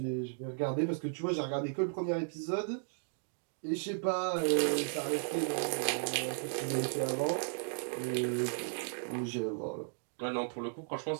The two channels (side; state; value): left; silent; digital silence